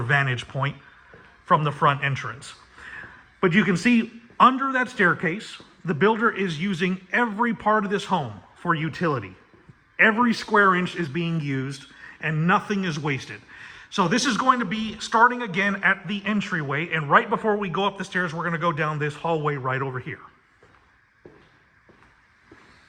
point from the front entrance. But you can see under that staircase, the builder is using every part of this home for utility. Every square inch is being used and nothing is wasted. So this is going to be starting again at the entryway, and right before we go up the stairs, we're going to go down this hallway right over here.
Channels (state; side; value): identical; both; correlation 1.00